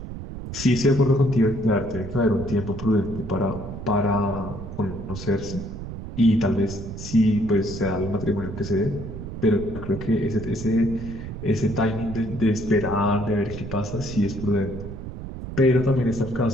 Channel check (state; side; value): noise; right; rumble, 9 dB below the sound